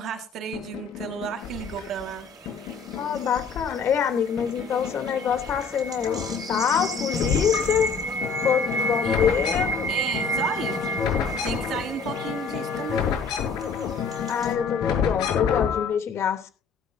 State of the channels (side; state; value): right; quieter; 4.9 dB